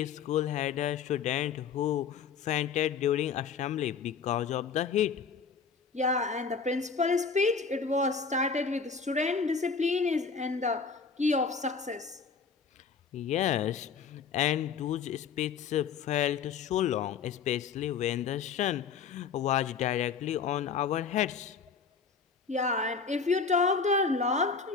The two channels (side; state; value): right; quieter; 5.8 dB